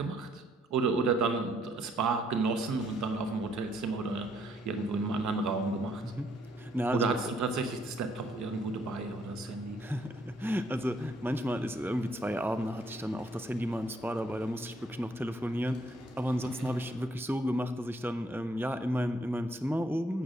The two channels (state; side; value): normal; both; correlation 0.68